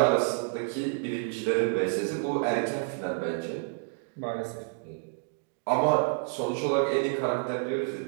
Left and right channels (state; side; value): silent; left; digital silence